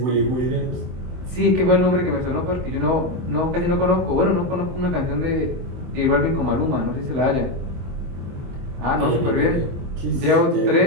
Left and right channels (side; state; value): left; late; 23 ms